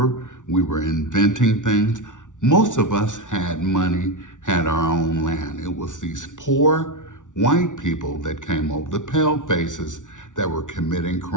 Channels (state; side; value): late; right; 0.87 ms